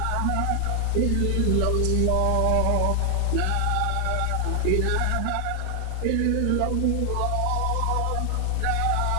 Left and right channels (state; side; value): different; both; correlation 0.00